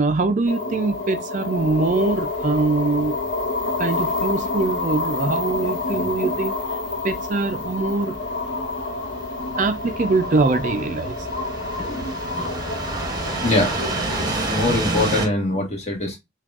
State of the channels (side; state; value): both; normal; correlation 0.31